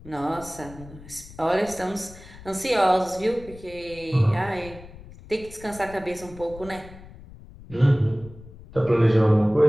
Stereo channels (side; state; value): left; noise; rumble, 18 dB below the sound